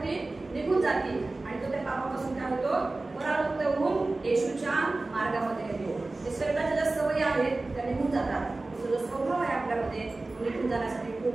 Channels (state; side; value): quieter; left; 3.2 dB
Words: निघून जाते आणि तो त्या पापापासून काय होतो, परावृत्त होऊन येशूच्या मार्गामध्ये येतो. ते शरीराच्या ज्या सवयी आहेत त्या निघून जातात. जो स्वभाव आहे आपल्यामध्ये निघून जाण्यासाठी